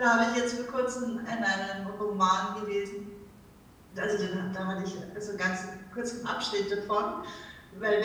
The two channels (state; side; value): identical; both; correlation 1.00